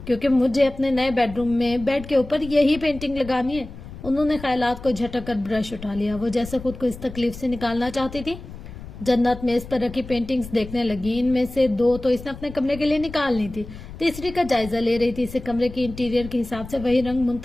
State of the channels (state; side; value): noise; left; rumble, 14 dB below the sound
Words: کیونکہ مجھے اپنے نئے بیڈ روم میں بیڈ کے اوپر یہی پینٹنگ لگانی ہے. انہوں نے خیالات کو جھٹک کر برش اٹھا لیا. وہ جیسے خود کو اس تکلیف سے نکالنا چاہتی تھی. جنت میز پر رکھی پینٹنگز دیکھنے لگی. ان میں سے 2 تو اس نے اپنے کمرے کے لیے نکالنی تھی، تیسری کا جائزہ لے رہی تھی. اسے کمرے کی انٹیریئر کے حساب سے وہی رنگ